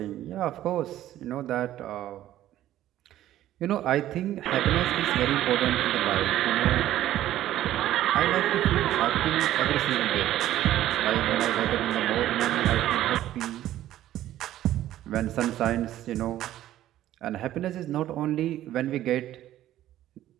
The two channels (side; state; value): left; quieter; 13.3 dB